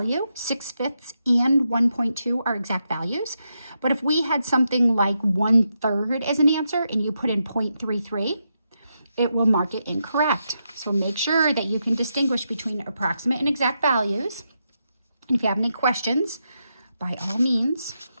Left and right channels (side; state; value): both; inverted; correlation -0.84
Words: 6/5 and 1.2 are exact values. But if we had something like 1/3 as an answer and you put in 0.33, it will mark it incorrect. So make sure that you can distinguish between approximate and exact values. And if you have any questions, by all means,